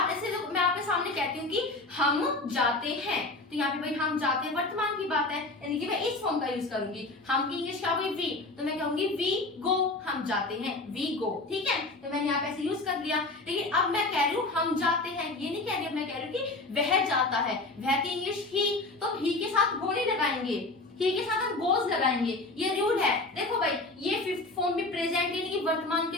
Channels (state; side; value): quieter; right; 3.1 dB